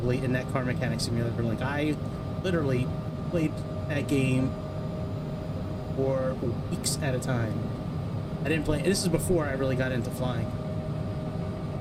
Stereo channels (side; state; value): both; identical; correlation 1.00